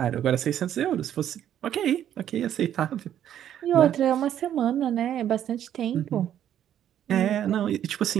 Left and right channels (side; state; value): left; quieter; 10.6 dB